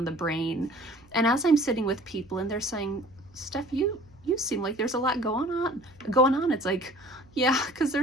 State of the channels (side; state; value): right; noise; hum, 29 dB below the sound